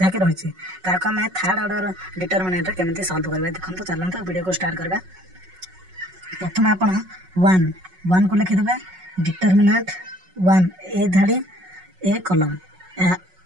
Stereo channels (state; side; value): late; left; 5.4 ms